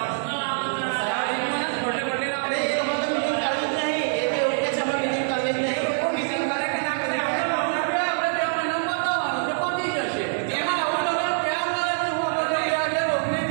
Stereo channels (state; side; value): silent; left; 61 dB below the other